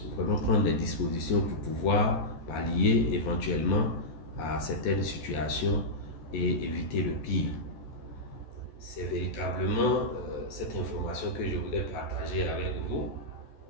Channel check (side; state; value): right; late; 14 ms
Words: vraiment prendre des dispositions pour pouvoir pallier éventuellement à certaines situations et éviter le pire. C'est véritablement cette information que je voulais partager avec vous.